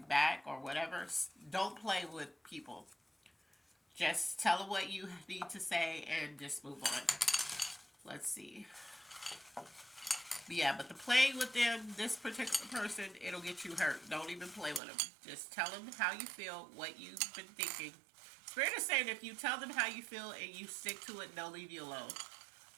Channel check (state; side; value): drops out; left; at 14.8 s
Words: back or whatever, don't play with people. Just tell them what you need to say and just move on. Let's see. Yeah, but the playing with them, this particular person, it'll get you hurt. Don't even play with them. Just tell them how you feel, what you've been thinking. Spirit is saying if you tell them how you feel and you stick to it, they'll leave you alone.